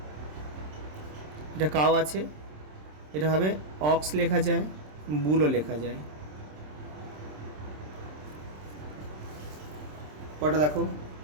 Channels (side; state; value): left; late; 27 ms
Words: এটা কাউ আছে, এটা হবে অক্স লেখা যায়, বুলও লেখা যায়। কটা দেখো,